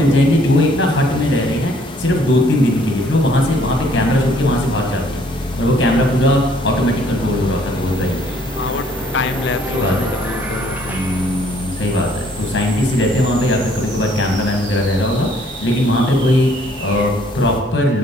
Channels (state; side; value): normal; both; correlation 0.62